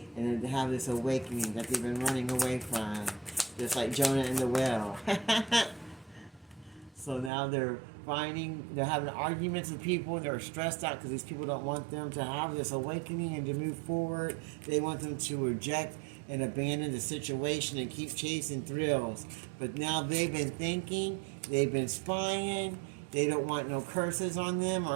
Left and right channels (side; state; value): left; drops out; at 7.3 s